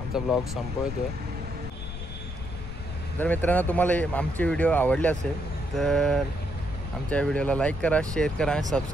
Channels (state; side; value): noise; left; rumble, 9 dB below the sound